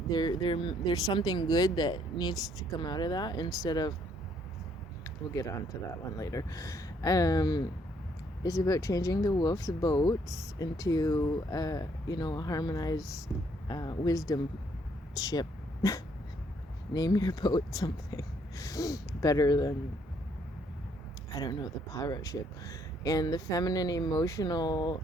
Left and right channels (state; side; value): normal; both; correlation 0.68